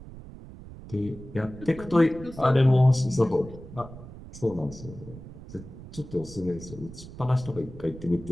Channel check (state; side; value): noise; right; rumble, 15 dB below the sound